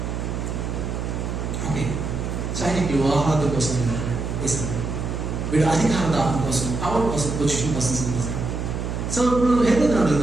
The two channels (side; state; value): right; noise; hum, 3 dB below the sound